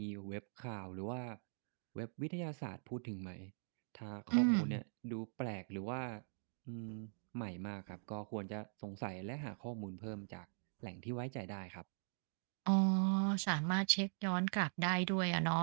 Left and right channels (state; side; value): silent; left; digital silence